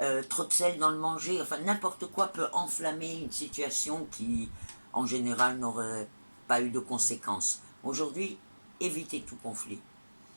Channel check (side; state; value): both; inverted; correlation -1.00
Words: trop de sel dans le manger, enfin n'importe quoi peut enflammer une situation qui, en général, n'aurait pas eu de conséquences. Aujourd'hui, évitez tout conflit.